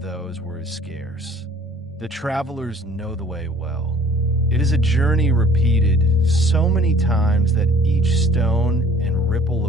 where it is scarce. The travelers know the way well. It is a journey repeated so many times that each stone and ripple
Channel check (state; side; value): normal; both; correlation 0.52